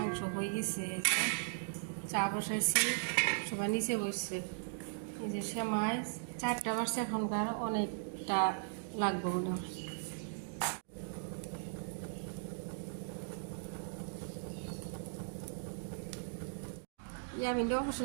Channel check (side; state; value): left; silent; digital silence